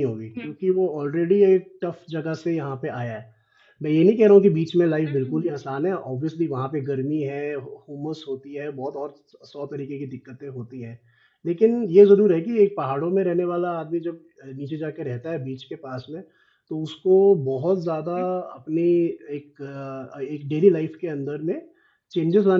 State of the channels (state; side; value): identical; both; correlation 1.00